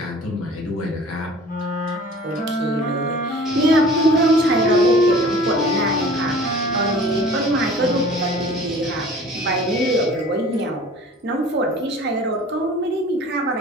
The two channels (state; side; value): normal; both; correlation 0.46